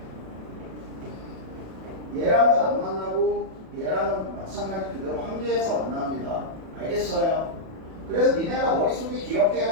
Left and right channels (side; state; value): left; late; 37 ms